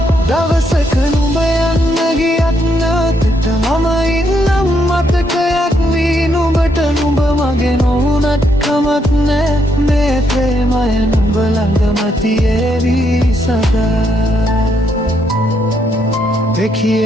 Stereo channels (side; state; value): both; normal; correlation 0.75